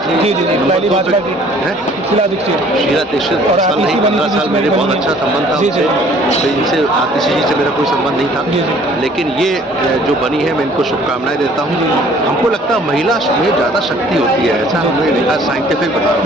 जी जी जी, पहली भाजपा की शीला दीक्षित। शीला दीक्षित और साल आतिशी नहीं, बनी 15 थी, साल बीच मेरे में बहुत बनी। अच्छा संबंध था जी जी। उनसे, तो इनसे आतिशी जी से मेरा कोई संबंध नहीं था। जी जी। लेकिन ये जो बनी है, मैं इनको शुभकामनाएं देता हूँ। हमको लगता है महिला में ज़्यादा शक्ति होती है, ऐसा हमने देखा, साइंटिफिक बता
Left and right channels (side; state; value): both; normal; correlation 0.55